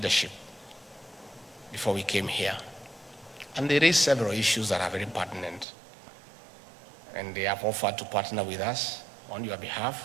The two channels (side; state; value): left; drops out; at 5.7 s